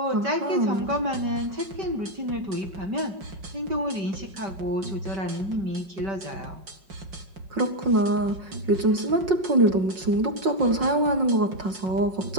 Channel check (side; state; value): left; late; 5.5 ms